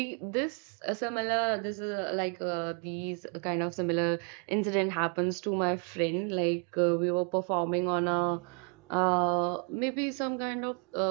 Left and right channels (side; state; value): left; quieter; 39.7 dB